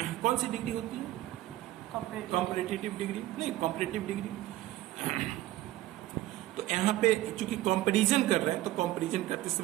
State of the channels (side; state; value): left; quieter; 15.5 dB